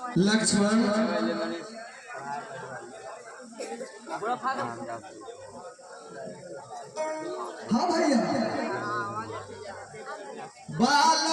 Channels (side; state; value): both; identical; correlation 1.00